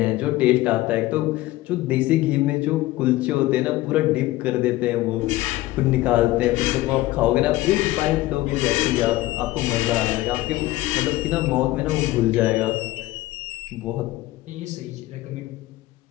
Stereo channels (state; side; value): quieter; right; 17.3 dB